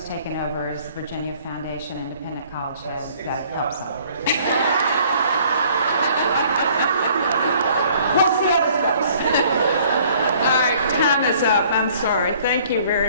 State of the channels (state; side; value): inverted; both; correlation -0.57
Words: taken over as Virginia Foundation Independent College Head, that helps out. We'll see how this goes. All right, time is up. I'm sorry. Thank you